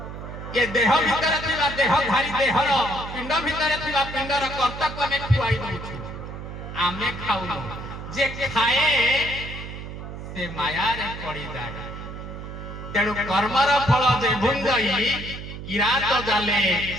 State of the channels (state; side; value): noise; right; hum, 10 dB below the sound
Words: ये देह भीतर थिबा देहधारी देहर पिंड भीतर थिबा पिंडर कर्तव्य आमे खुआई दउछु आमे खाउनु जे खाए से माया रे पड़ी जाए तेणु कर्मर फल जे भुंजई किरात जाले